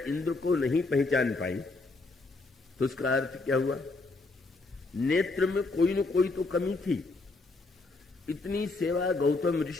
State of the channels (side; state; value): right; quieter; 3.4 dB